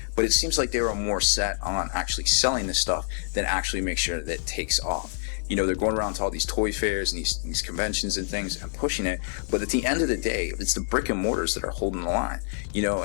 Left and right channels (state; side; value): silent; right; 61 dB below the other